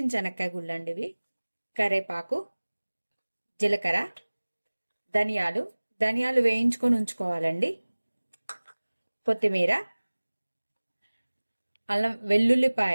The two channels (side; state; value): both; inverted; correlation -1.00